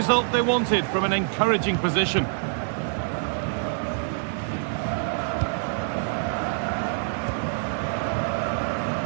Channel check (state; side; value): silent; left; digital silence